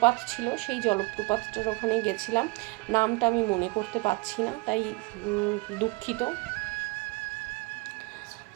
ছিল, সেই জলপ্রপাতটার ওখানে গেছিলাম, নামটা আমি মনে করতে পারছি না, তাই দুঃখিত।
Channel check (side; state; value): left; quieter; 25.7 dB